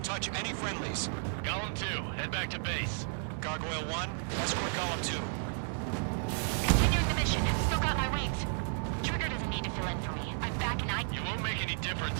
touch any friendlies. Golem 2, head back to base. Gargoyle 1, escort Golem 2. Continuing the mission. Still got my wings. Trigger doesn't need to fill in for me. I'm back and You won't make any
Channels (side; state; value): left; silent; 56 dB below the other